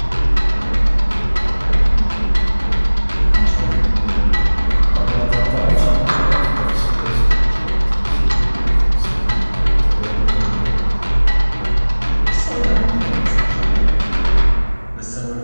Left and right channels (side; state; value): both; inverted; correlation -1.00